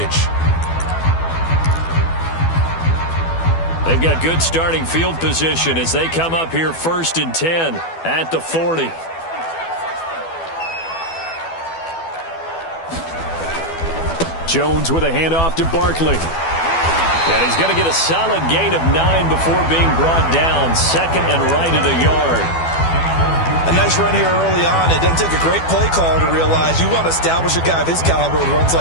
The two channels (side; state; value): right; late; 12 ms